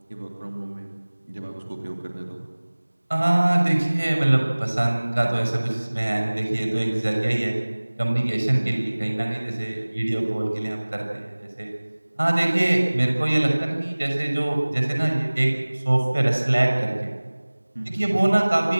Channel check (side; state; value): both; inverted; correlation -1.00